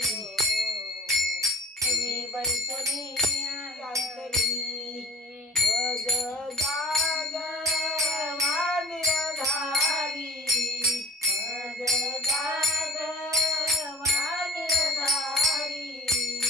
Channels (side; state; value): both; normal; correlation 0.43